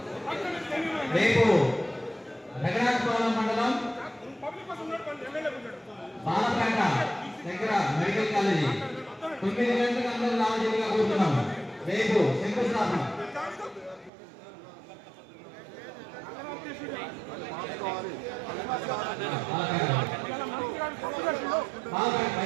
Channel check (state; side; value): drops out; left; at 14.1 s